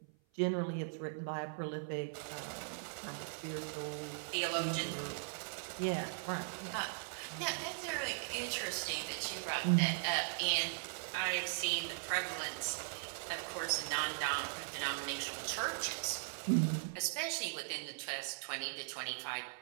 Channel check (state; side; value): silent; left; 52 dB below the other